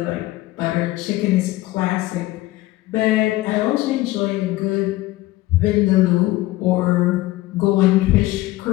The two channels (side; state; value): right; quieter; 17.7 dB